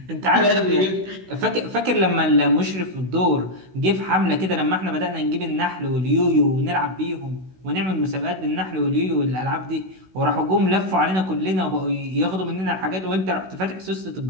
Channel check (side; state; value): left; late; 16 ms